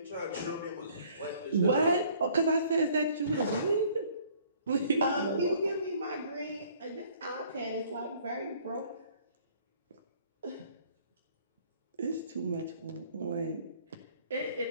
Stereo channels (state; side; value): inverted; both; correlation -0.57